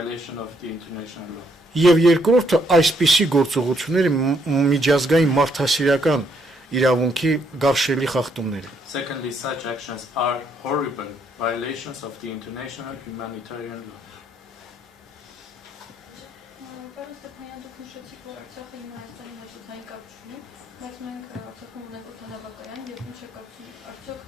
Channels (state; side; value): normal; both; correlation 0.72